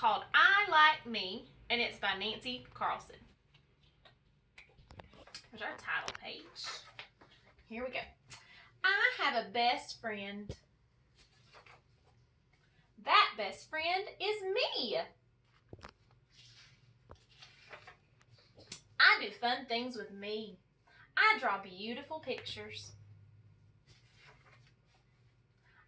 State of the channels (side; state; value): both; identical; correlation 1.00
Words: I Like Me, and it's by Nancy Carlson. There's our title page. Here we go. I have a best friend. That best friend is me. I do fun things with me. I draw beautiful pictures.